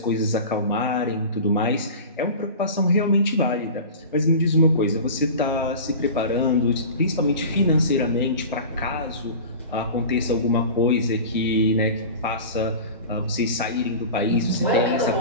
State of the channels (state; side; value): inverted; both; correlation -0.34